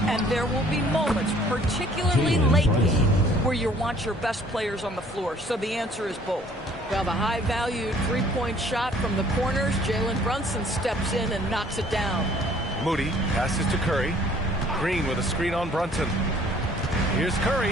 And there will be moments, particularly late game, where you want your best players on the floor. So the answer is both. Well, the high-valued three-point shot from the corners, Jalen Brunson steps in and knocks it down. Moody passes to Curry. Green with a screen on Brunson. Here's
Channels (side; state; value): both; normal; correlation 0.57